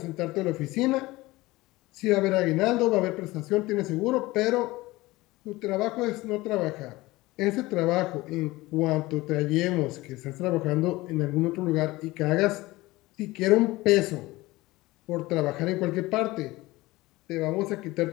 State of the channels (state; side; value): quieter; right; 19.8 dB